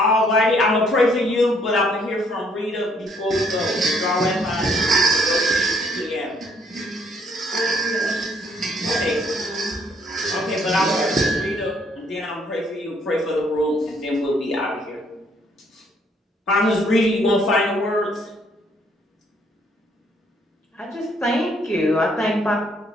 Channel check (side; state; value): both; normal; correlation 0.66